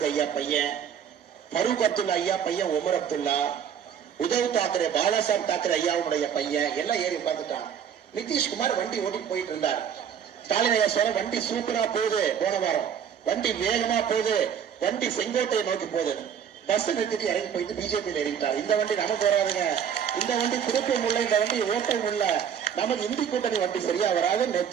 ஐயா பையன், ஃபரூக் அப்துல்லா ஐயா பையன் உமர் அப்துல்லா, உத்தவ் தாக்கரே பாலாசாஹிப் தாக்கரே ஐயாவுடைய பையன் எல்லாம் ஏறி உட்கார்ந்துட்டாங்க. நிதிஷ்குமார் வண்டி ஓட்டிட்டு போயிட்டு இருந்தார். ஸ்டாலின் ஐயா சொல்ற வண்டி சூப்பரா போகுது, போன வாரம் வண்டி வேகமா போகுது, வண்டி செங்கோட்டையை நோக்கி போகுது. பஸ் நிறுத்திட்டு இறங்கி போயிட்டு பிஜேபியில் இறங்கிட்டார். இந்த வண்டி நமக்கு வராதுங்க, இந்த வண்டி திருப்பவும் இல்லை, இந்த வண்டி ஓட்டவும் இல்லை, நமக்கு இந்தி கூட்டணி வண்டி சரியா வராது.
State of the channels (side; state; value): left; quieter; 8.3 dB